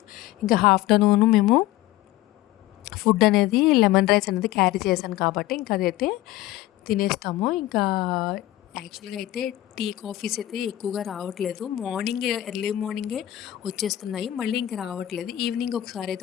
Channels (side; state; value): right; quieter; 15.1 dB